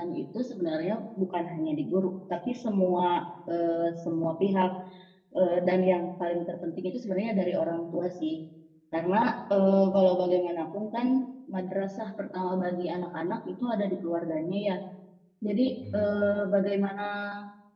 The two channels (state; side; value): identical; both; correlation 1.00